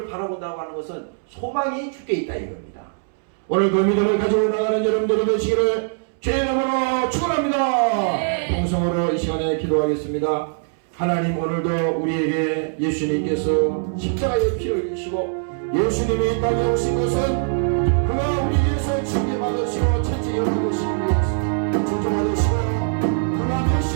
바라본다고 하는 것은 소망이 주께 있다 이겁니다. 오늘 그 믿음을 가지고 나가는 여러분들이 되시기를 주의 이름으로 축원합니다. 동성으로 이 시간에 기도하겠습니다. 하나님 오늘도 우리에게 예수님께서 십자가의 피를 흘리시고 예수님이 이 땅에 오신 것은 그가 우리 위해서 징계받으시고 채찍 열어보시기 위해서 존중받으시고 그가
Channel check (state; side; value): silent; left; 64 dB below the other